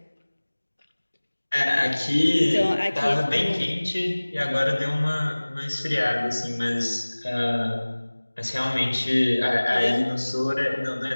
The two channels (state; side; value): inverted; both; correlation -1.00